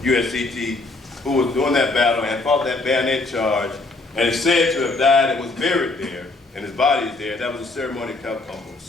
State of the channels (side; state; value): right; quieter; 3.3 dB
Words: USCT, who was doing that battle and fought that bayonet charge, and is said to have died and was buried there, and his body is there. That was a ceremony